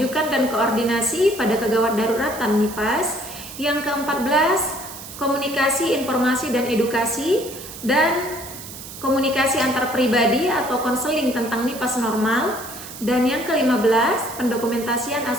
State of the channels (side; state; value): right; noise; hiss, 13 dB below the sound